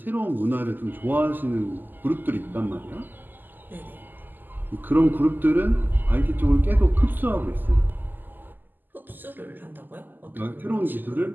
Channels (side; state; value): left; late; 0.089 ms